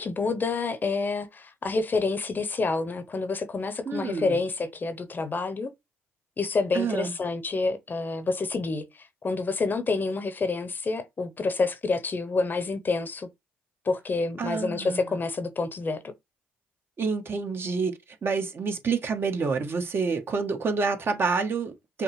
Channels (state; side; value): normal; both; correlation 0.74